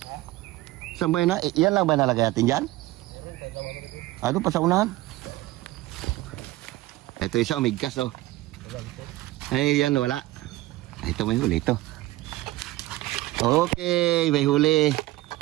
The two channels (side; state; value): left; quieter; 17.9 dB